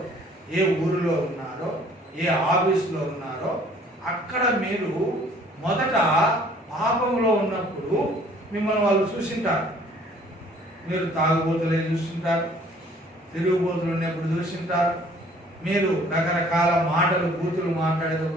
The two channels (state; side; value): normal; both; correlation 0.56